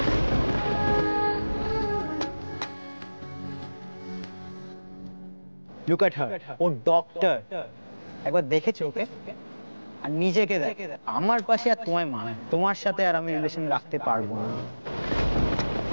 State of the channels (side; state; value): both; inverted; correlation -1.00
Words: লুক এট হার, ও ডক্টর। একবার দেখেছো ওকে? আর নিজেকে দেখ। আমার পাশে আর তোমায় মানে, তোমার সাথে আর আমি রিলেশন রাখতে পারবো না।